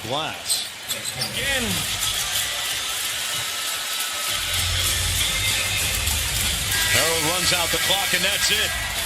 glass. Again. Harold runs out the clock, and that's it.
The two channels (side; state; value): both; identical; correlation 1.00